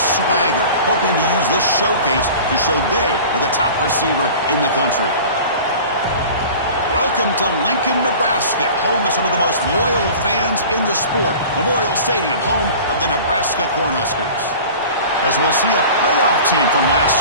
hoping to use this showcase to show they are the top receiver in the country. Welcome to Lincoln, Nebraska, home of some of the most loyal fans in the sport. Memorial Stadium, home of the Nebraska Cornhuskers. As we'll see a playoff team from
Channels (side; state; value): both; inverted; correlation -0.40